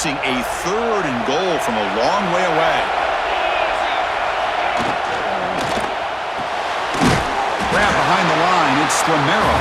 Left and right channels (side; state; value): both; identical; correlation 1.00